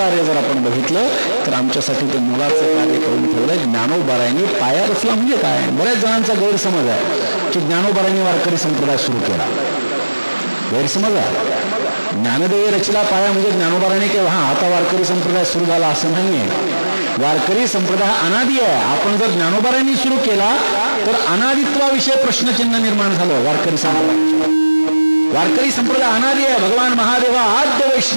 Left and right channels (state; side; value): inverted; both; correlation -1.00